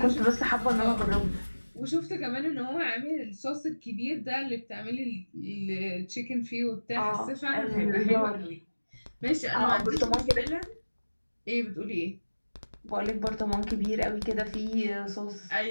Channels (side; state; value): both; inverted; correlation -1.00